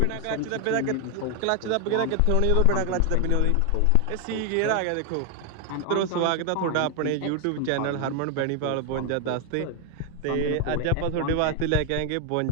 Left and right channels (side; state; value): both; different; correlation 0.00